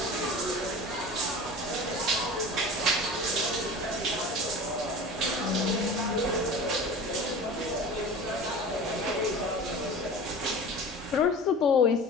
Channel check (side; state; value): both; normal; correlation 0.36